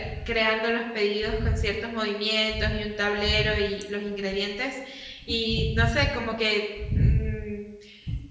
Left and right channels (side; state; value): both; identical; correlation 1.00